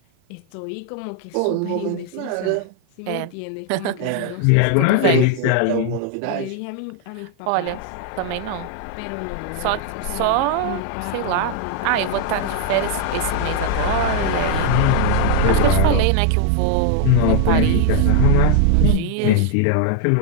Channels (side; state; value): both; different; correlation 0.00